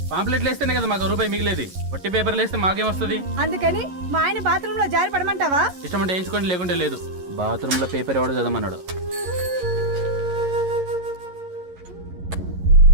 పాంప్లెట్లు వేస్తేనే కదా మాకు రూపాయి మిగిలేది. ఒట్టి పేపర్లు వేస్తే మాకేమొస్తుంది? అందుకని మా ఆయన బాత్రూమ్ లో జారి పడమంటావా? ఇష్టం అంటే వేయించుకోండి, లేకుంటే లేదు. బాత్రూమ్ లో పేపర్ ఎవడో చదవమన్నాడు.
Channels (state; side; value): late; left; 11 ms